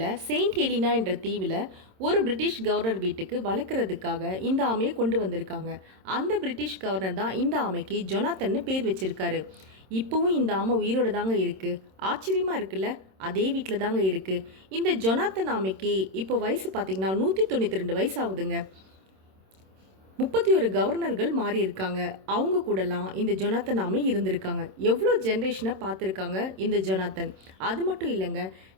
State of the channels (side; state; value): left; late; 26 ms